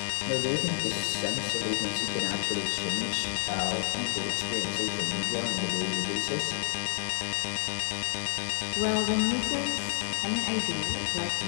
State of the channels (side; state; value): right; silent; digital silence